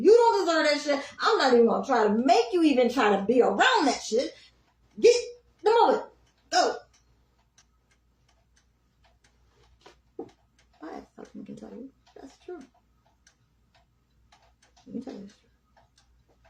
don't deserve that shit. I'm not even going to try to make you even try to be around that shit. Get the moment. Go. I have something I can tell you. That's true. Let me tell you this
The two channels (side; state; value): both; identical; correlation 1.00